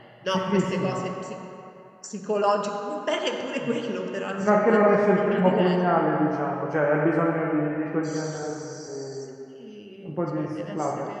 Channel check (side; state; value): both; identical; correlation 1.00